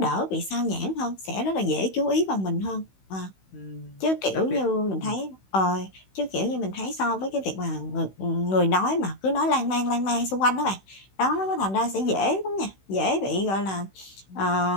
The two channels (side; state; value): right; late; 16 ms